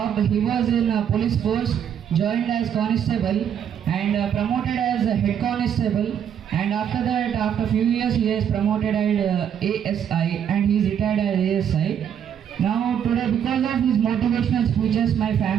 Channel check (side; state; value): left; quieter; 8.8 dB